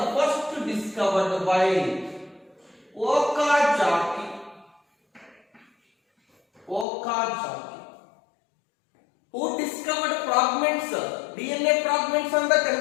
first discovered by Okazaki. Who discovered fragments, DNA fragments on the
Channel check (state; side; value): drops out; right; at 6.9 s